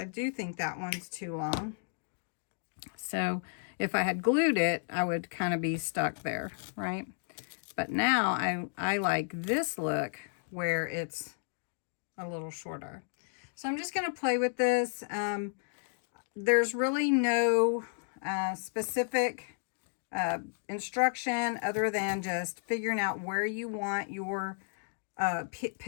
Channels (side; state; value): right; silent; digital silence